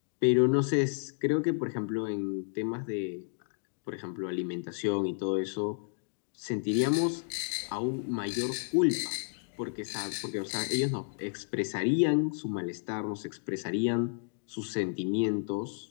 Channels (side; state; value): right; silent; digital silence